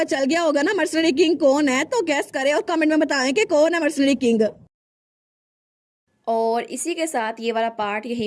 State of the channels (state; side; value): identical; both; correlation 1.00